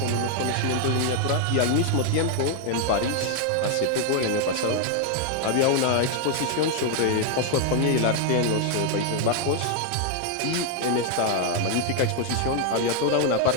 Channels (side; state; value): both; different; correlation 0.00